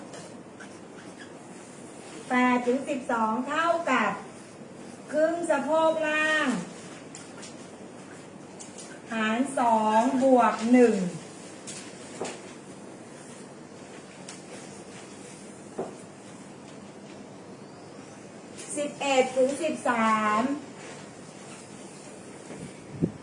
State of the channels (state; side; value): identical; both; correlation 1.00